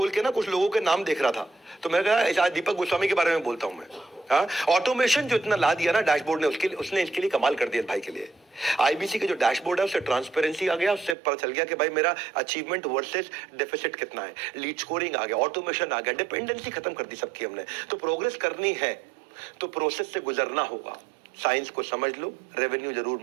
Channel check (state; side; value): drops out; left; at 11.2 s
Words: के ना कुछ लोगों के नाम देख रहा था, तो मैं कहा दीपक गोस्वामी के बारे में बोलता हूं मैं। ऑटोमेशन जो इतना ला दिया ना डैशबोर्ड ने, उसने इसके लिए कमाल कर दिया भाई के लिए। आईबीसी के जो डैशबोर्ड है उससे ट्रांसपेरेंसी आ गया, उससे पता चल गया कि भाई मेरा अचीवमेंट वर्सेस डेफिसिट कितना है, लीड स्कोरिंग आ गया, ऑटोमेशन आ गया, डिपेंडेंसी खत्म कर दी सबकी हमने। तो प्रोग्रेस करनी है तो प्रोसेस से गुजरना होगा। साइंस को समझ लो, रेवेन्यू जरूर